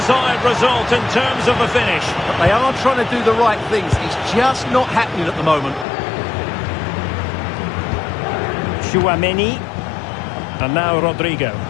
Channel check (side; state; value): right; drops out; at 5.9 s